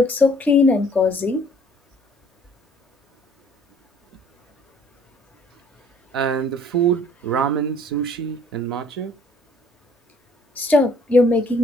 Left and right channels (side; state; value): both; normal; correlation 0.58